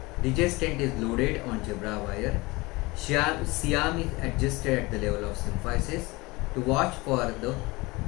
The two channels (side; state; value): right; quieter; 23.1 dB